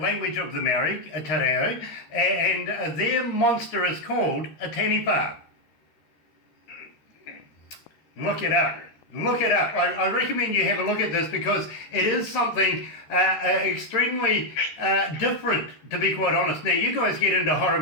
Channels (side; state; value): right; late; 13 ms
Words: of the Maori, Te Reo, and their monster is called a taniwha. Look it up. Look it up. I recommend you have a look at this because it is something extremely different, to be quite honest. Now, you guys get into horror